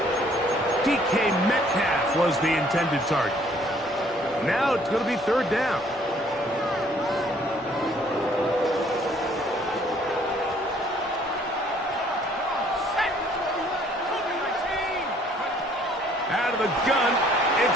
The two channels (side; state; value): both; normal; correlation 0.60